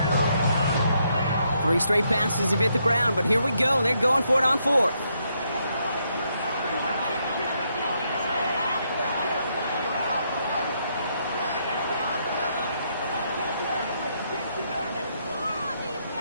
Three straight passes have hit the ground, but here we go. They're going for it on 4th.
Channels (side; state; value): both; inverted; correlation -0.76